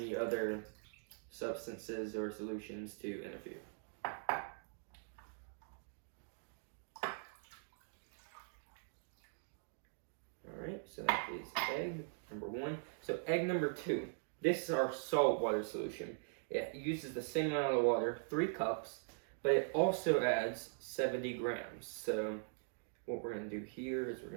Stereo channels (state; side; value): silent; left; digital silence